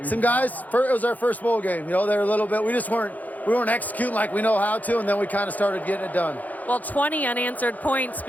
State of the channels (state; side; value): late; right; 0.079 ms